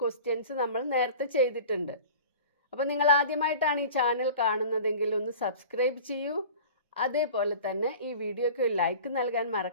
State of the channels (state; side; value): inverted; both; correlation -0.39